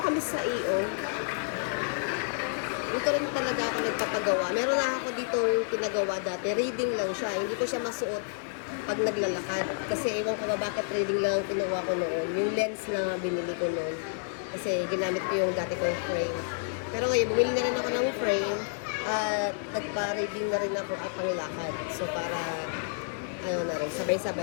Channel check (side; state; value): right; silent; digital silence